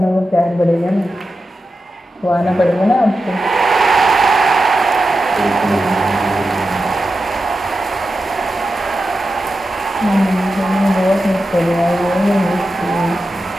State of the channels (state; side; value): normal; both; correlation 0.90